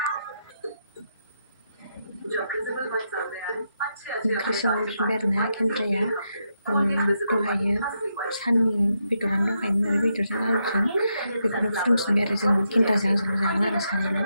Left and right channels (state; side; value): inverted; both; correlation -0.82